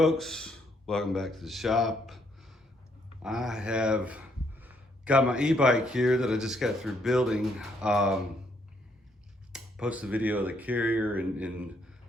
welcome back to the shop. I have got my e-bike here that I just got through building. Posted a video of the carrier and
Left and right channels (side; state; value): both; normal; correlation 0.71